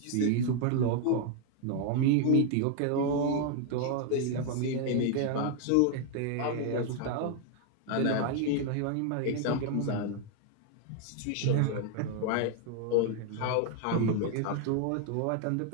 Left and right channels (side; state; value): both; different; correlation 0.01